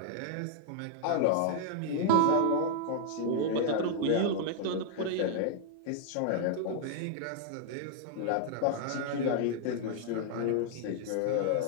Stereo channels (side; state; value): both; different; correlation -0.01